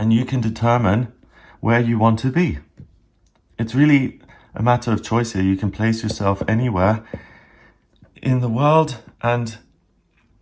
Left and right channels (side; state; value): both; identical; correlation 1.00